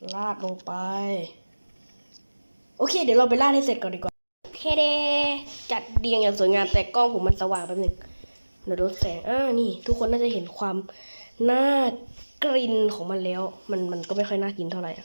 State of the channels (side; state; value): both; inverted; correlation -1.00